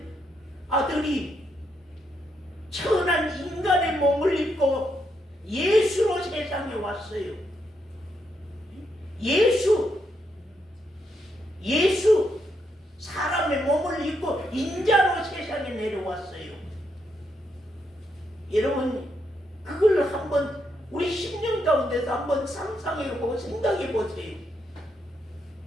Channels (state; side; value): normal; both; correlation 0.79